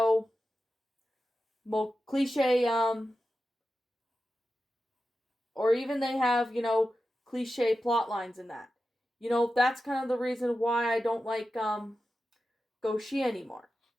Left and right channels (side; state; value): both; normal; correlation 0.92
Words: more cliche or even they have, cliche plot lines in that. That's kind of the reason why I don't like Goshi anymore.